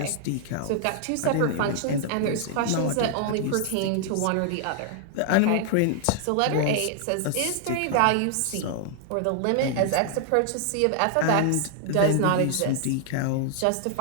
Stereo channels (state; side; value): different; both; correlation 0.00